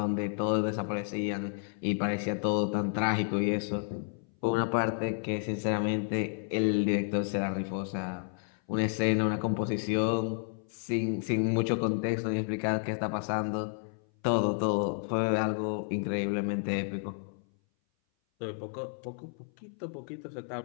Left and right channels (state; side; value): silent; right; 57 dB below the other